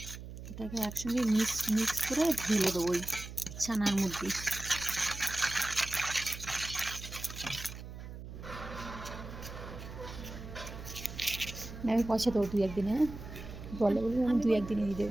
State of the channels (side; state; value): right; noise; hum, 11 dB below the sound